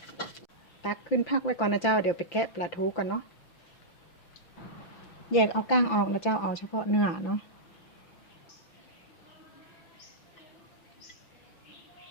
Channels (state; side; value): late; right; 5.9 ms